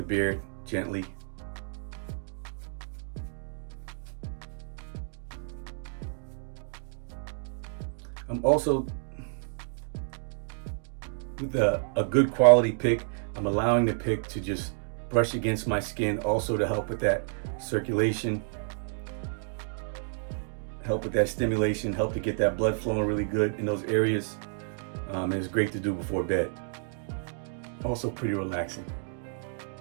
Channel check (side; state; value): left; silent; digital silence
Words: beard gently. I'm also, with a good quality pick, I'm allowing the pick to just brush against my skin, also to help with that circulation. help with that stimulation, help to get that blood flowing really good in those areas. And it's great to do before bed. Also pretty relaxing.